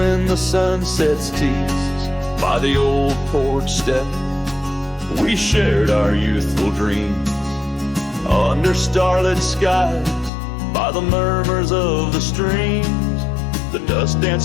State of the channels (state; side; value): drops out; right; at 10.3 s